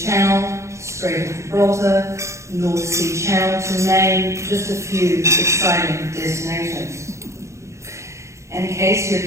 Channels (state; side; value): late; left; 0.14 ms